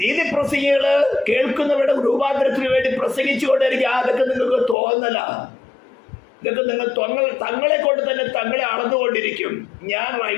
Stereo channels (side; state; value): right; drops out; at 4.8 s